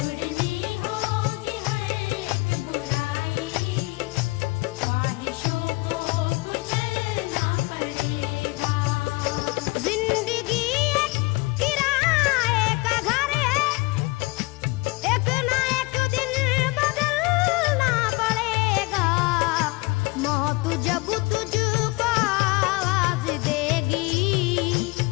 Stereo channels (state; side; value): quieter; right; 24.1 dB